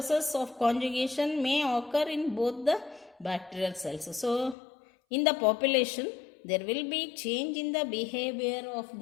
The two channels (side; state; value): right; drops out; at 4.5 s